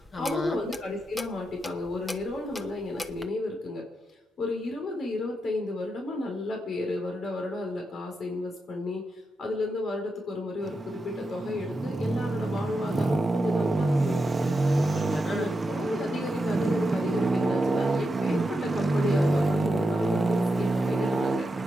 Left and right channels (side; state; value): both; normal; correlation 0.87